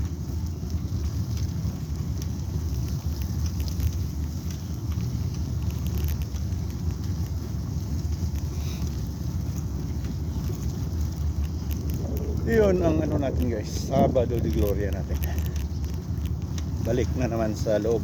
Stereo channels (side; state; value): both; identical; correlation 1.00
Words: Yun ang ano natin guys, Sabado de Gloria natin. Balik na naman sa loob